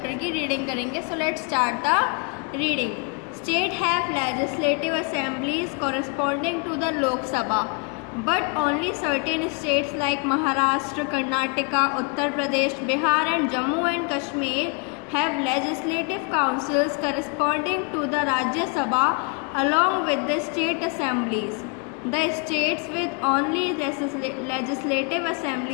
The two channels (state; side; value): quieter; right; 32.5 dB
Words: की reading करेंगे. So let's start the reading. State have legislative assemblies corresponding to the Lok Sabha, but only certain states like Maharashtra, Karnataka, Uttar Pradesh, Bihar and Jammu and Kashmir have legislative councils corresponding to the Rajya Sabha along with the state assemblies. The states with only legislative